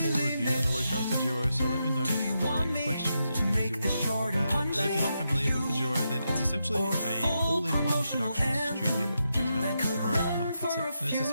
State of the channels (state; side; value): inverted; both; correlation -0.85